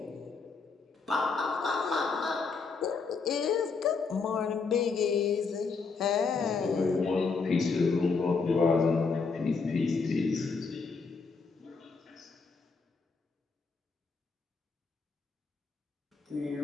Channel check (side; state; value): right; quieter; 4.7 dB